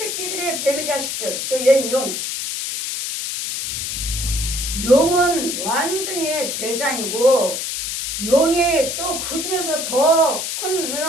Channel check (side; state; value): left; noise; hiss, 3 dB below the sound